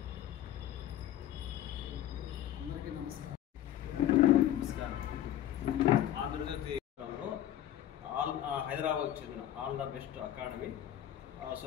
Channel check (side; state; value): right; quieter; 12.0 dB